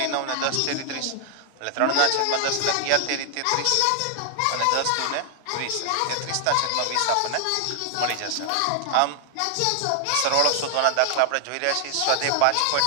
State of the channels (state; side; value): different; both; correlation 0.00